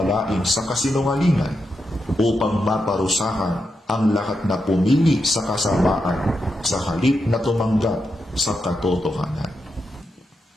sa kasinungalingan upang maparusahan ang lahat na pumili sa kasamaan sa halip na tumanggap sa katotohanan.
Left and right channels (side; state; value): both; normal; correlation 0.85